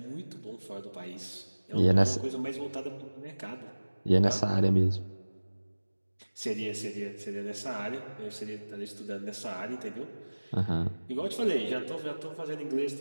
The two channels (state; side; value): inverted; both; correlation -1.00